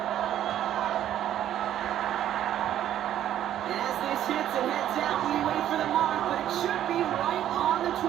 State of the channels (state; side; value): quieter; left; 11.4 dB